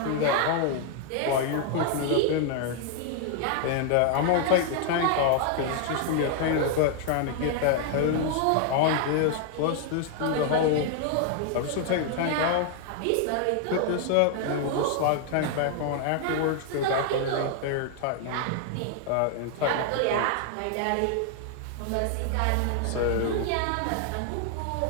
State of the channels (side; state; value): both; different; correlation 0.00